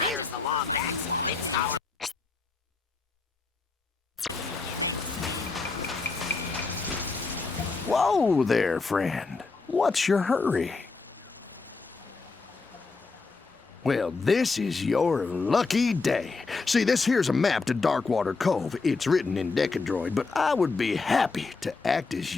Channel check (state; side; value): quieter; right; 4.2 dB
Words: the Lombax. It's our... Whoa there, friend. What's your hurry? Well, this is your lucky day. See, this here's a map to Darkwater Cove. It's written in Decadroid, but I would be happy to act as